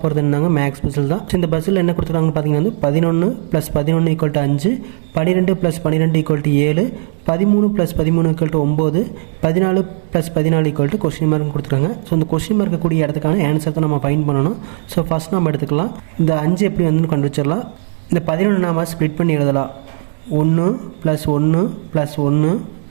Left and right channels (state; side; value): silent; left; digital silence